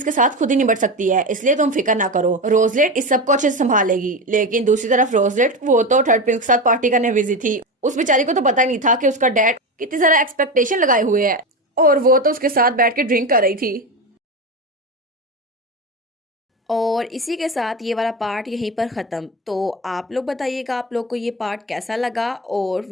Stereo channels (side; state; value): both; normal; correlation 0.20